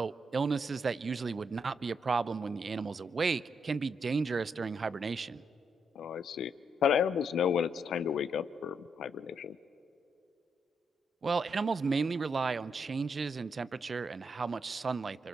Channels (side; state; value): both; normal; correlation 0.79